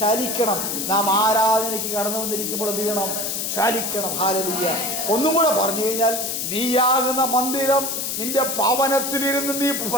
ചലിക്കണം. നാം ആരാധനയ്ക്ക് കടന്നു വന്നിരിക്കുമ്പോൾ എന്ത് ചെയ്യണം, ചലിക്കണം. ഹല്ലേലൂയ. ഒന്നും കൂടെ പറഞ്ഞു കഴിഞ്ഞാൽ, നീയാകുന്ന മന്ദിരം, നിന്റെ ഭവനത്തിലിരുന്ന് നീ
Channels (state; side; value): noise; left; hiss, 2 dB below the sound